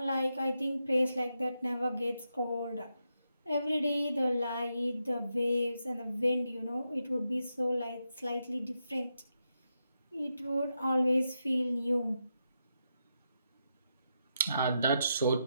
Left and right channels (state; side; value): inverted; both; correlation -0.85